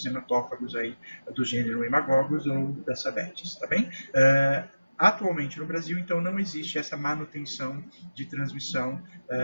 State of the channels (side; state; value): both; inverted; correlation -0.99